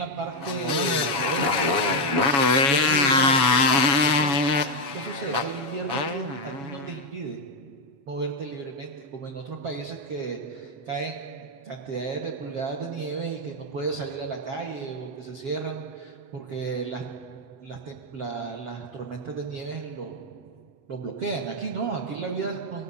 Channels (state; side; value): late; left; 7.2 ms